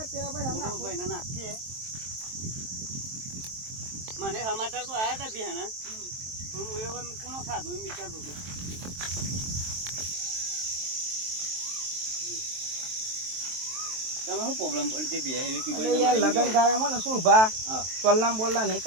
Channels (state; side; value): late; left; 23 ms